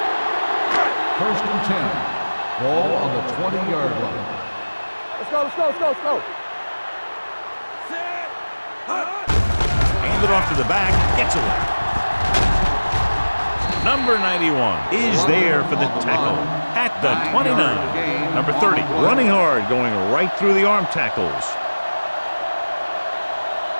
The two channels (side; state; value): both; inverted; correlation -1.00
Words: First and 10. Ball on the 20-yard line. Let's go, let's go, let's go, let's go. Hand it off to the back, gets away. Number 91 is there for the tackle at the 29. Number 30, running hard, going right through the arm tackles.